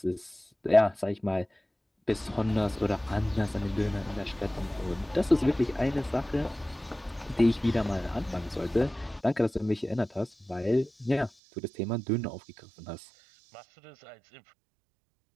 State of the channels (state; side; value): drops out; left; at 11.3 s